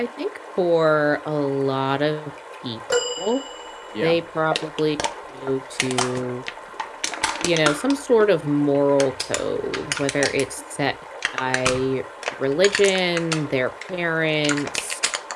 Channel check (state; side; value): identical; both; correlation 1.00